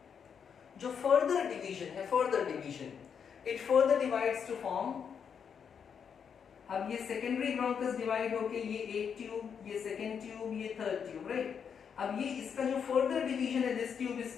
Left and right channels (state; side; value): quieter; right; 7.1 dB